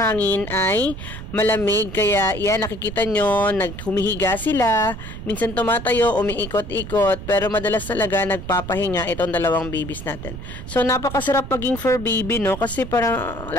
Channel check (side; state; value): right; noise; rumble, 10 dB below the sound